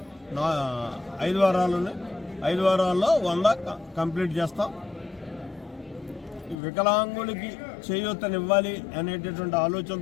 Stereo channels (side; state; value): right; drops out; at 6.6 s